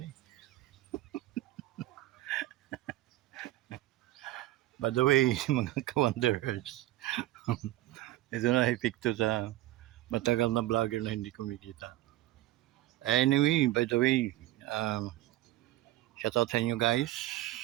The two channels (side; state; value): left; quieter; 15.7 dB